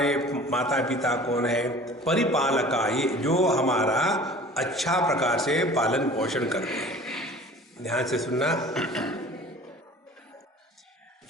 माता पिता कौन है? परिपालका, ये जो हमारा अच्छा प्रकार से पालन पोषण करते हैं। ध्यान से सुनना।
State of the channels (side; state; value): both; normal; correlation 0.45